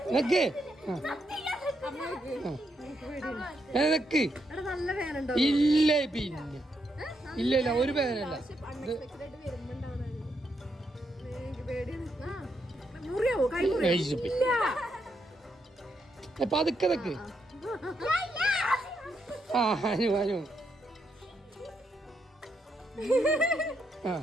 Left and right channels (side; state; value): both; normal; correlation 0.79